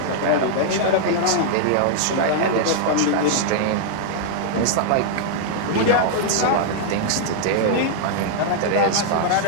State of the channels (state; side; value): different; both; correlation -0.01